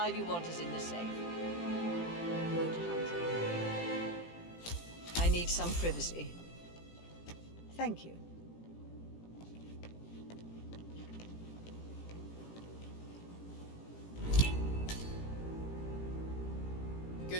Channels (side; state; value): right; late; 18 ms